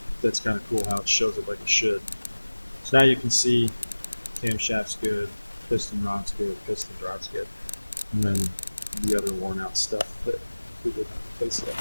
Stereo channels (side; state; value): both; inverted; correlation -1.00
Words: that's kind of cool how it shows it like it should. So now you can see camshaft's good, piston rod's good, piston rod's good, and then the other worn out stuff that we didn't replace yet